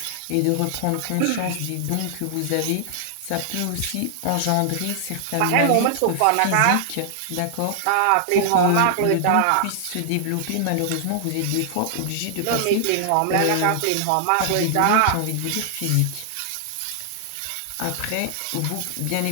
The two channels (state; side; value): different; both; correlation 0.00